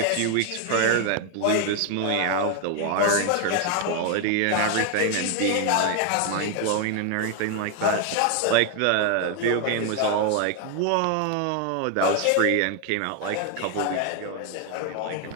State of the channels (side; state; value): both; different; correlation 0.00